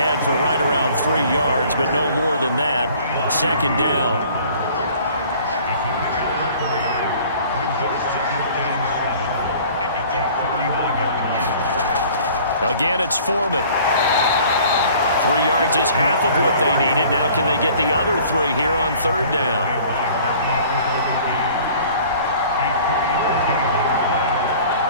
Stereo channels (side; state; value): both; inverted; correlation -0.50